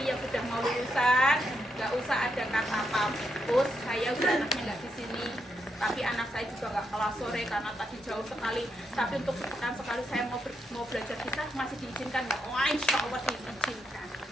yang sudah mau lulusan, nggak usah ada kata pampus, saya udah anaknya nggak di sini. Tapi anak saya juga nggak kelas sore karena tadi jauh sekali. Tapi untuk sepekan sekali saya mau belajar kisah, masih diizinkan nggak? Wah, insya Allah diizinkan.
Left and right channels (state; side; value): normal; both; correlation 0.81